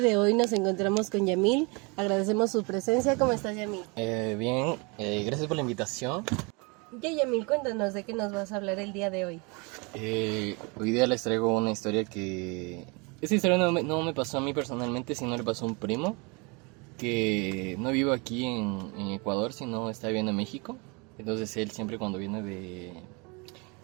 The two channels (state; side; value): quieter; left; 29.8 dB